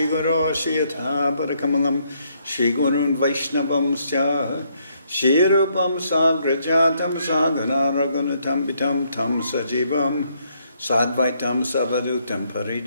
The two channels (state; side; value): inverted; both; correlation -0.72